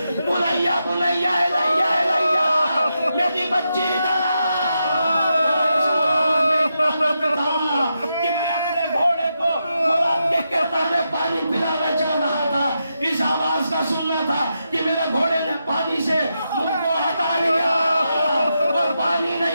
बुनैया बुनैया इलैया इलैया, मेरी बच्ची इधर आ। कि मैं अपने घोड़े को खुराक के किरदार में पानी पिलाना चाह रहा था, इस आवाज का सुनना था कि मेरे घोड़े ने पानी से मुझ को हटा लिया और पानी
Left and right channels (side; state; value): both; inverted; correlation -0.85